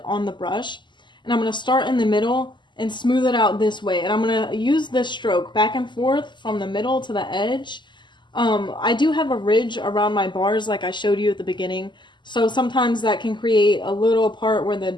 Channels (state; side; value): late; right; 0.22 ms